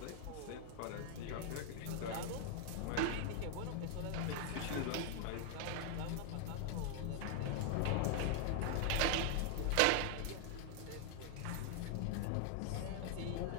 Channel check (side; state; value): both; different; correlation 0.00